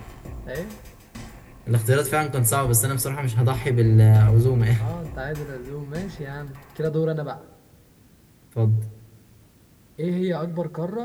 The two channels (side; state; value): both; identical; correlation 1.00